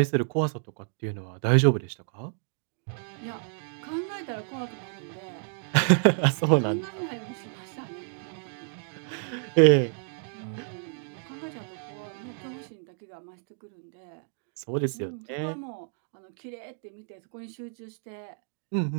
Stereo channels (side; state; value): left; silent; digital silence